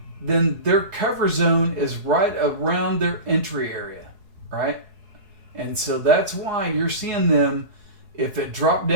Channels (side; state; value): left; late; 4.7 ms